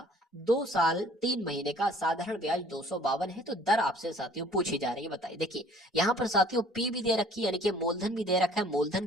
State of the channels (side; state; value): both; normal; correlation 0.54